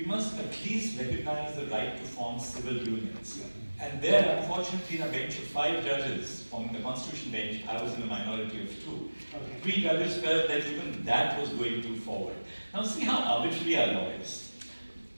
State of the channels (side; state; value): both; inverted; correlation -1.00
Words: must at least recognize the right to form civil unions. And there, unfortunately, in a bench of 5 judges from the Constitution bench, I was in a minority of 2. Okay. 3 judges felt that even that was going too forward. Now see how arbitrary our law is.